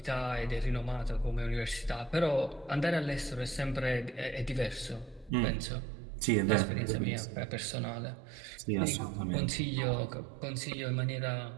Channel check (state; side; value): drops out; left; at 5.3 s